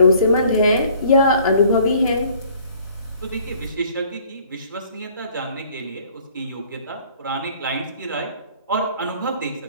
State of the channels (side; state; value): both; inverted; correlation -0.56